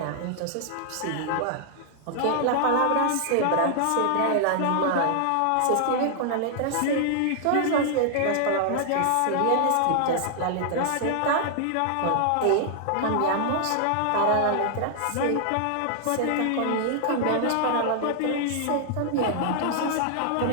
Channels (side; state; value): both; different; correlation -0.01